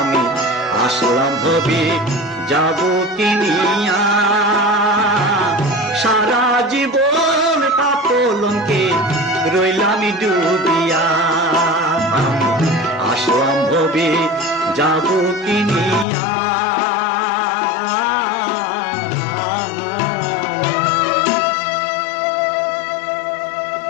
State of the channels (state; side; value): drops out; right; at 16.1 s